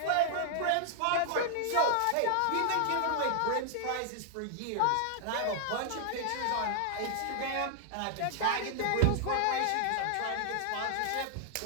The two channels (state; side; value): different; both; correlation 0.00